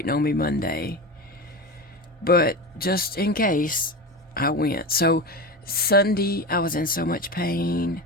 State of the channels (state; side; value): normal; both; correlation 0.24